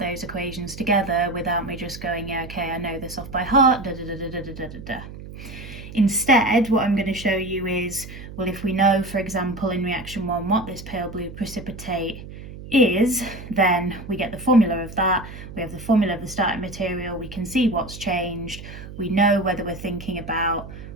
equations together without me just going, yeah, okay, I know this off by heart, da da da da da da da da. Instead, what I'm going to show you is, well, if we know, for example, in reaction 1 what this pale blue precipitate is, then we get the formula of that, we have the formula of the starting material, we can see what's changed, we know whether we're thinking about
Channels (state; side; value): noise; right; hum, 13 dB below the sound